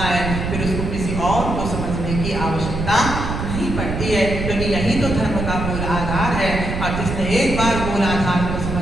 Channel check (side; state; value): right; noise; rumble, 4 dB below the sound